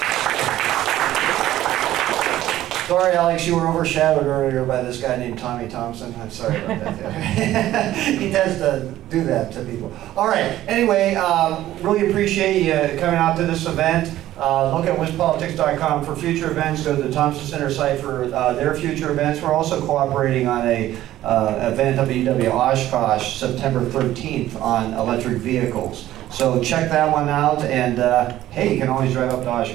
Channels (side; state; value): left; quieter; 14.0 dB